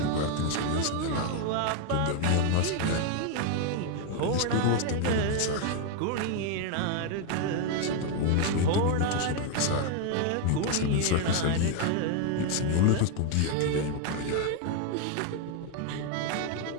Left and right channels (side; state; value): both; different; correlation 0.01